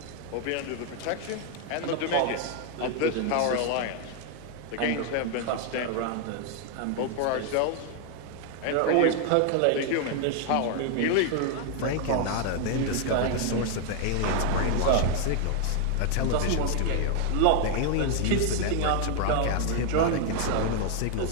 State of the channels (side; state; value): both; different; correlation 0.00